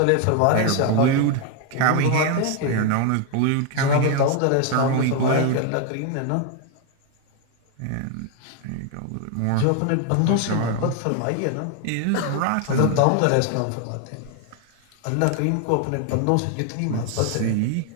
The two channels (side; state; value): both; different; correlation 0.01